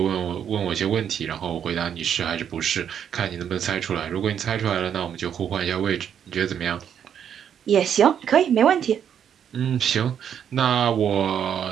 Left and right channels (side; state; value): left; quieter; 8.7 dB